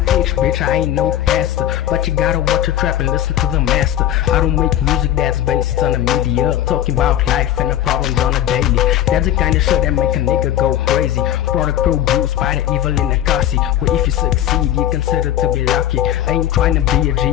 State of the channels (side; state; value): right; quieter; 12.0 dB